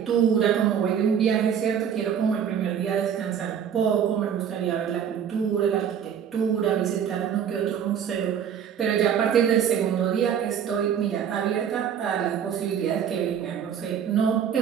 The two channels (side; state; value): left; quieter; 8.3 dB